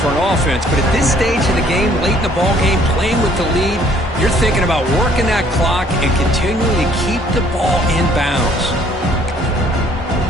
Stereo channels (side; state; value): both; normal; correlation 0.60